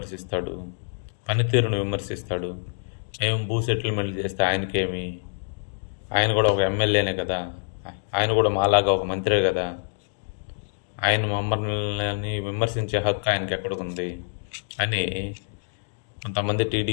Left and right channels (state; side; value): silent; right; digital silence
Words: పనితీరును విమర్శిస్తాడు. మేము భూ సెటిల్మెంట్ చేస్తే ఆయనకేమి? ఆయన కూడా ఒక ఎమ్మెల్యేనే కదా, ఆయన కూడా మాలాగా ఒక మంత్రే కదా. ఆయన మమ్మల్ని విమర్శించే హక్కు ఆయనకి ఎక్కడికుంది అని కొంతమంది